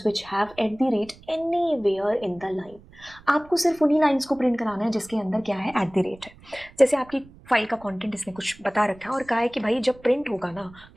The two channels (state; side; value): noise; right; rumble, 23 dB below the sound